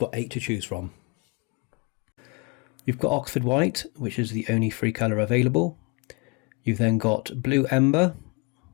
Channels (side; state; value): right; quieter; 30.4 dB